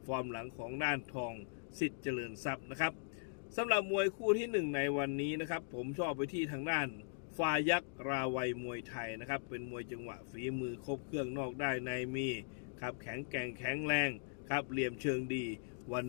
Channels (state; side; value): silent; right; digital silence